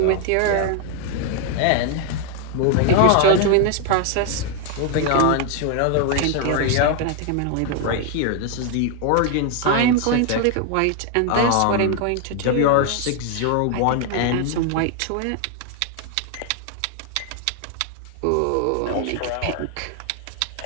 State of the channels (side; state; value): both; different; correlation 0.00